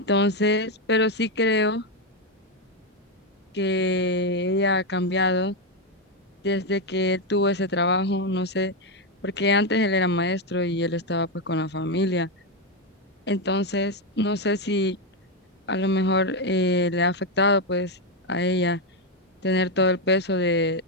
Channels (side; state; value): both; normal; correlation 0.05